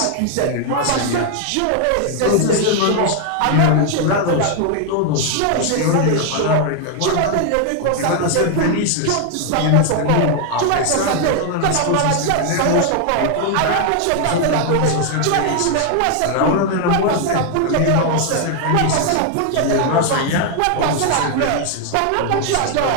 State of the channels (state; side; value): different; both; correlation 0.00